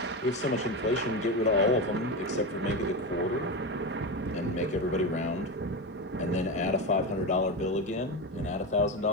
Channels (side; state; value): both; normal; correlation 0.18